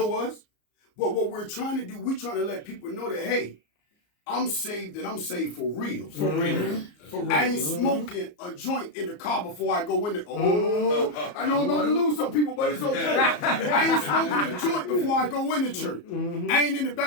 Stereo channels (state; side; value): late; right; 34 ms